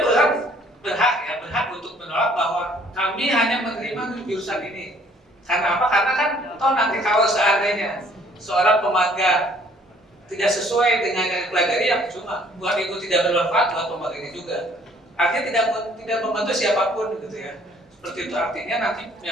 perusahaan berhak untuk menolak bahwa kami hanya menerima jurusan ini. Karena apa? Karena kan toh nanti kalau seandainya seorang pemagang tidak sesuai dengan yang dipelajari, yang cuma buat Ibu tidak bermanfaat buat pemagangnya juga. Artinya tidak membantu siapapun gitu ya. Seperti itu, artinya nanti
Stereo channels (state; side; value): normal; both; correlation 0.59